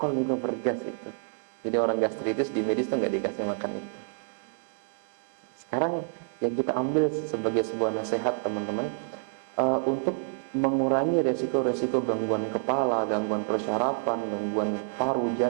juga bergas itu. Jadi orang gastritis di medis tuh nggak dikasih makan itu. Sekarang yang kita ambil sebagai sebuah nasihat teman-teman, untuk mengurangi resiko-resiko gangguan kepala, gangguan persyarafan, gangguan paru,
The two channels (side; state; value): left; silent; 59 dB below the other